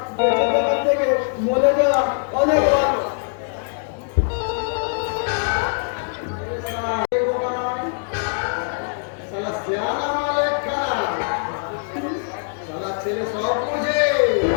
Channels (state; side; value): silent; right; digital silence